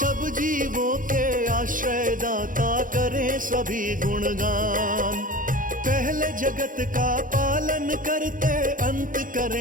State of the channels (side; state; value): left; late; 0.39 ms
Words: जीवों के आश्रय दाता करें सभी गुणगान। पहले जगत का पालन करते अंत